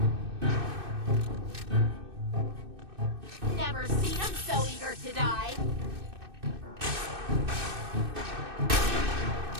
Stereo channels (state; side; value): late; left; 2.6 ms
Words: Never seen him so eager to die.